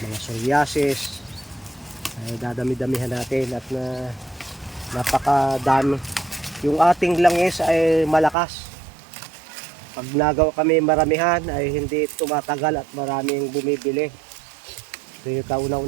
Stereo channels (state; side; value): drops out; left; at 8.3 s